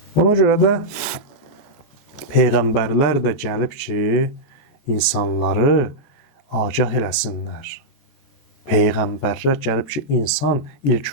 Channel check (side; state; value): right; late; 14 ms